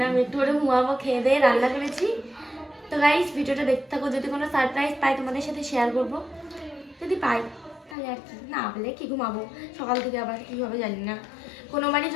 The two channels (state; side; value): drops out; right; at 8.0 s